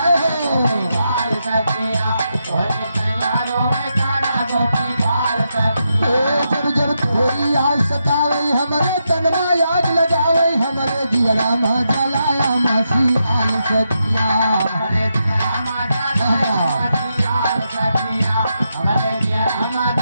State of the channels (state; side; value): inverted; both; correlation -0.84